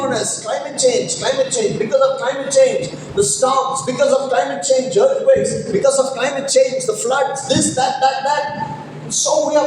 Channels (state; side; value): identical; both; correlation 1.00